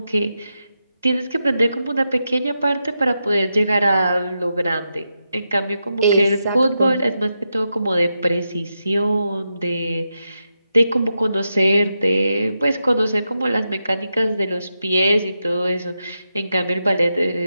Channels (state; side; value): inverted; both; correlation -0.87